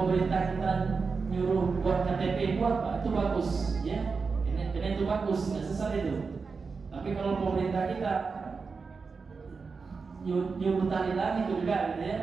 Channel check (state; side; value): quieter; left; 4.8 dB